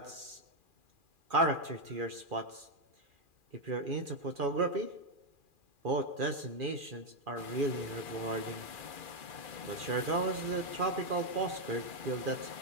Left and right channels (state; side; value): late; left; 2.4 ms